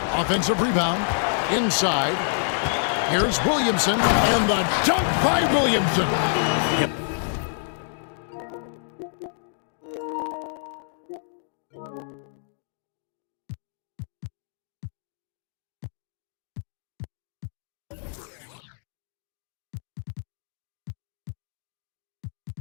Offensive rebound. Inside. Here's Williamson. And the dunk by Williamson. Yep.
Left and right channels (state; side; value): silent; right; digital silence